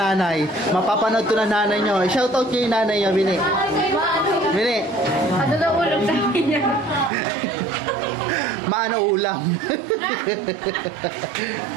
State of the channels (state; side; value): drops out; left; at 7.1 s